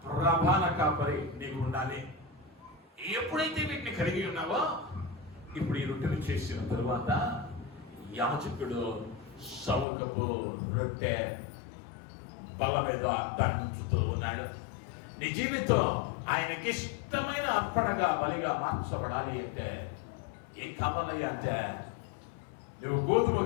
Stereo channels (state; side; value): drops out; right; at 9.9 s